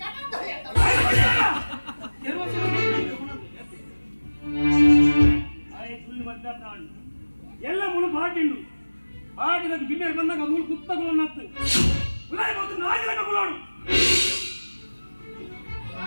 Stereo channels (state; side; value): inverted; both; correlation -1.00